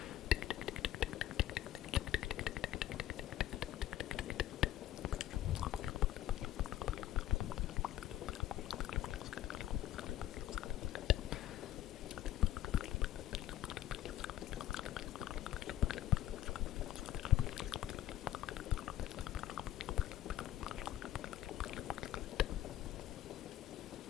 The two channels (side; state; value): right; quieter; 12.9 dB